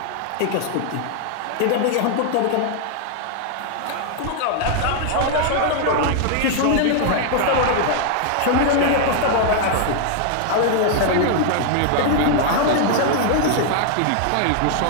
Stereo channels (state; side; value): different; both; correlation 0.00